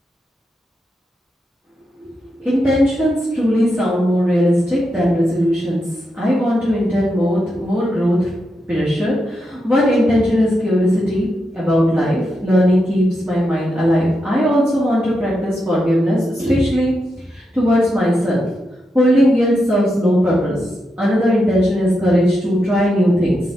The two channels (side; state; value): both; normal; correlation 0.85